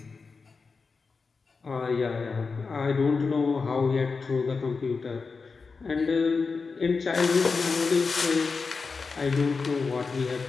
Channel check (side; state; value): right; quieter; 4.6 dB